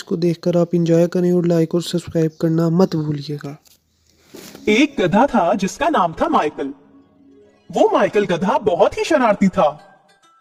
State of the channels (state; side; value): identical; both; correlation 1.00